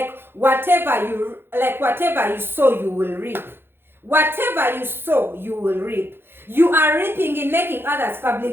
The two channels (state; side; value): late; left; 0.11 ms